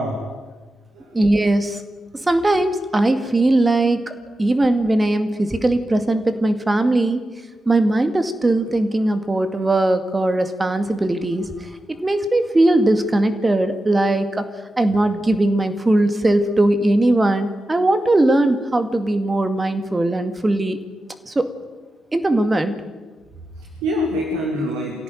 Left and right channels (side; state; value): both; normal; correlation 0.91